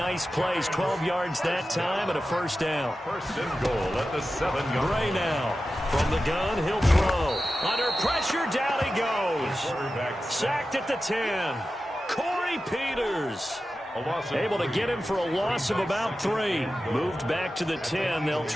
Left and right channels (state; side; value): normal; both; correlation 0.93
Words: plays, 12 yards that time and a first down. 1st and goal at the 7-yard. Gray now. From the gun, he'll throw. Under pressure, down he goes. Sacked at the 10. Corey Peters. Able to get him for a loss of about 3. Moved back to the 10. They'll